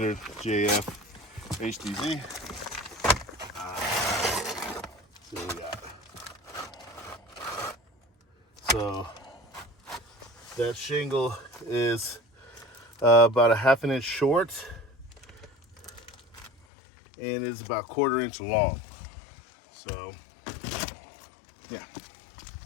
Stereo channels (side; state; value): right; drops out; at 16.7 s